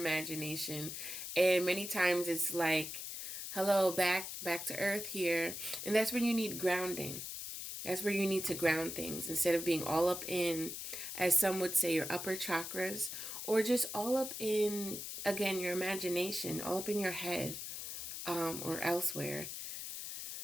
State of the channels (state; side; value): noise; left; hiss, 7 dB below the sound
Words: And many times it's like, hello, back to earth here. And that's when you need grounding. That's where you need to ground things instead of being all up in, as some would say, your upper chakras, or just all up in, again, your imagination, all up in your head, or elsewhere.